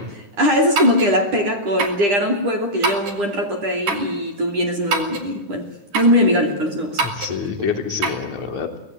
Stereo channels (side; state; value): left; late; 10 ms